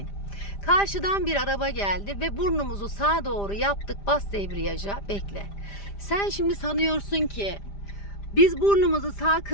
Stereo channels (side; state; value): right; late; 5.0 ms